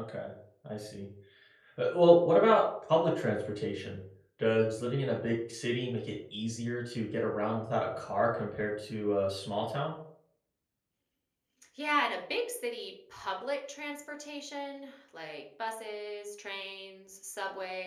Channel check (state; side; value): identical; both; correlation 1.00